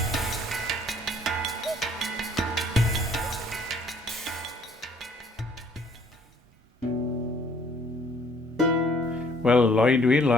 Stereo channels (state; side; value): normal; both; correlation 0.60